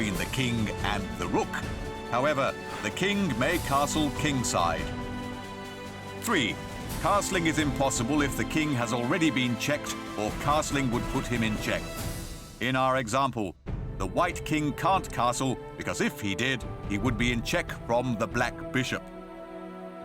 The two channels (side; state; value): both; identical; correlation 1.00